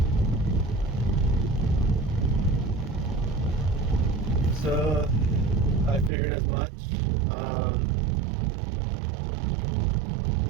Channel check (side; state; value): left; drops out; at 6.1 s